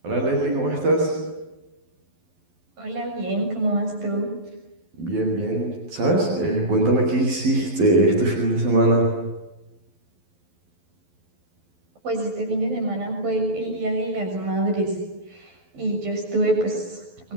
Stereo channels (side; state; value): left; late; 12 ms